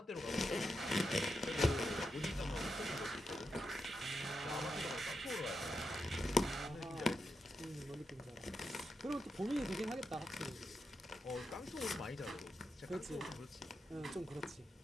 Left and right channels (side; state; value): both; normal; correlation 0.86